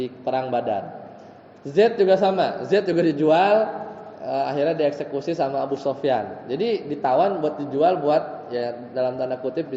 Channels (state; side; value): identical; both; correlation 1.00